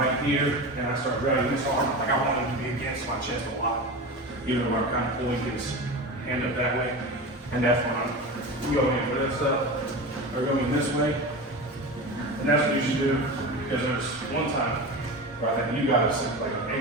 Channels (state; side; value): normal; both; correlation 0.27